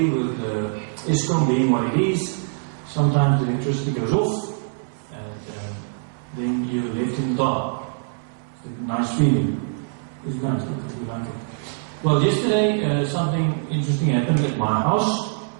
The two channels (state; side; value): silent; left; 62 dB below the other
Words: with ESCOM being what it is. Sometimes the electricity goes off and then you're left in the dark. It's a nice feeling. It's nice, you like it. Well, yesterday something interesting happened at my house.